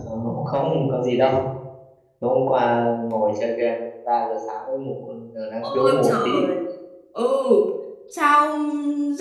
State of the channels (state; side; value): identical; both; correlation 1.00